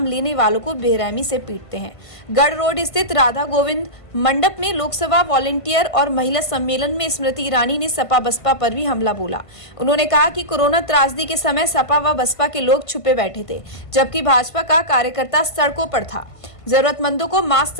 लेने वालों को बेरहमी से पीटते हैं। गढ़ रोड स्थित राधा गोविंद मंडप में लोकसभा वॉलंटियर और महिला सम्मेलन में स्मृति ईरानी ने सपा बसपा पर भी हमला बोला। उन्होंने कहा कि कोरोना त्रासदी के समय सपा व बसपा के लोग छुपे बैठे थे, जबकि भाजपा का कार्यकर्ता सड़कों पर था, जरूरतमंदों को मास्क,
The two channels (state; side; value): late; right; 1.5 ms